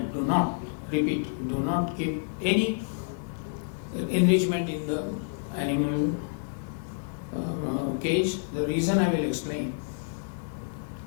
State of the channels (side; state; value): right; silent; digital silence